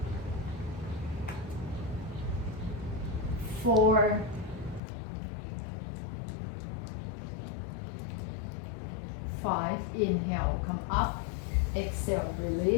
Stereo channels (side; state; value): right; drops out; at 4.8 s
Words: 4. 5. Inhale, come up. Exhale,